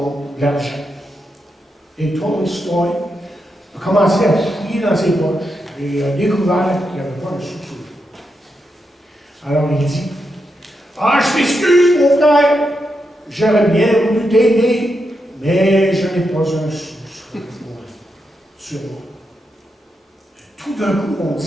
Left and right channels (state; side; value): normal; both; correlation 0.85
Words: l'argent. Et Tolstoï a commencé à fouiller dans ses poches et a découvert qu'il n'y avait pas un sou. Alors il dit, « Ah, je m'excuse, mon frère, j'aurais bien voulu t'aider, mais je n'ai pas un sou sur moi. » Tout d'un coup, on